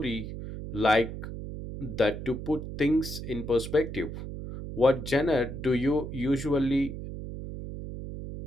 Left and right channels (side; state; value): right; noise; hum, 8 dB below the sound